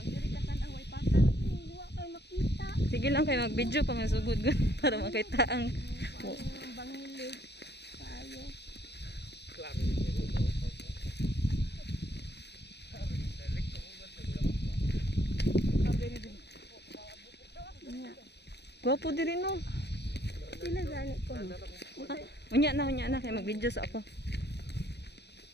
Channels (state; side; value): late; right; 0.49 ms